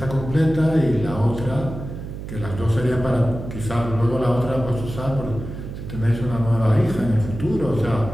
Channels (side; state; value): right; noise; hum, 9 dB below the sound